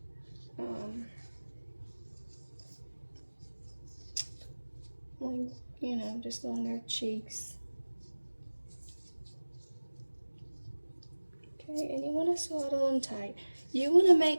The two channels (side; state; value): both; inverted; correlation -1.00